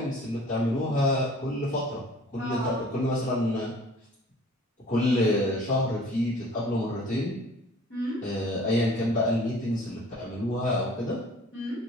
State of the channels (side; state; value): both; normal; correlation 0.50